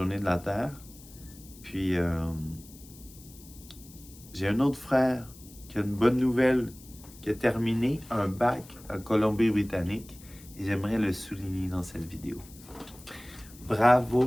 de la Terre. Puis J'ai un autre frère qui a une bonne nouvelle, qui a terminé un bac en Colombie-Britannique et j'aimerais le souligner dans cette vidéo.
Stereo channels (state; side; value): noise; left; hiss, 21 dB below the sound